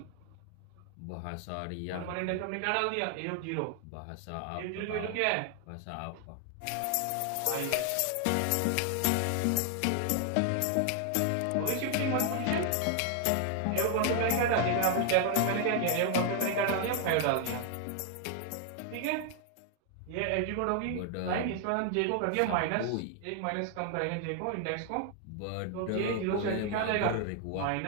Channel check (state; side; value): different; both; correlation 0.00